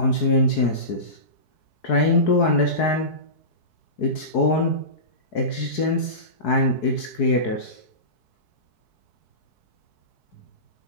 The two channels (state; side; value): late; right; 4.7 ms